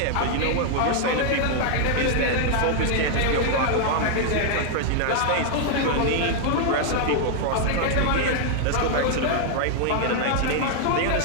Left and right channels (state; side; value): different; both; correlation 0.00